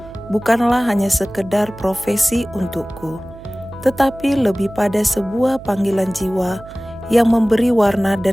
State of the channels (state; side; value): noise; right; hum, 18 dB below the sound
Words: bukanlah hanya sekedar profesi untukku, tetapi lebih pada sebuah panggilan jiwa yang memberi warna